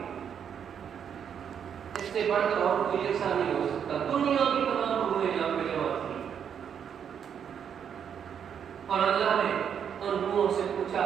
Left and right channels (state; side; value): quieter; left; 8.0 dB